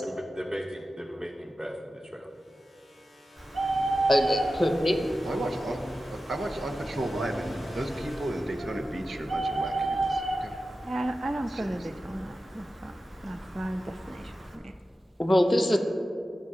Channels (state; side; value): normal; both; correlation 0.93